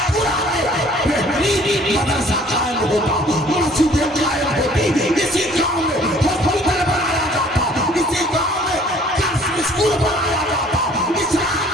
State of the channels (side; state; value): both; normal; correlation 0.55